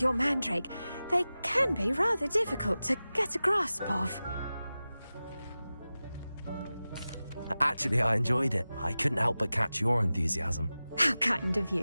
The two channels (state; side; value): inverted; both; correlation -0.96